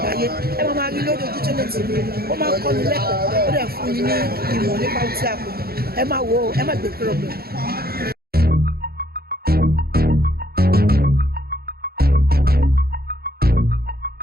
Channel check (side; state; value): left; late; 0.45 ms